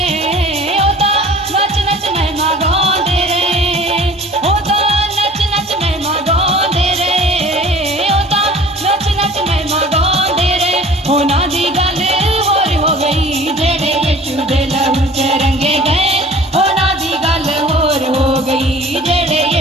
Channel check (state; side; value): normal; both; correlation 0.47